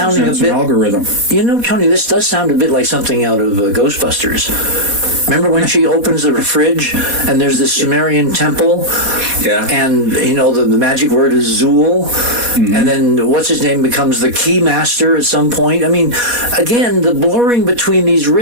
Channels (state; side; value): late; left; 4.1 ms